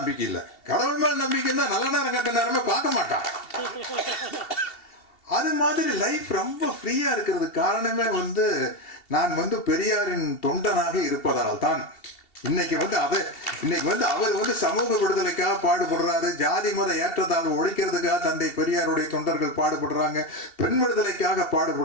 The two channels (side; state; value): right; late; 2.7 ms